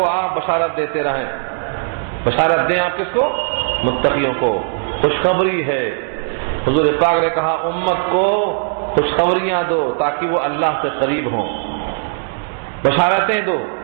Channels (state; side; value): silent; left; 67 dB below the other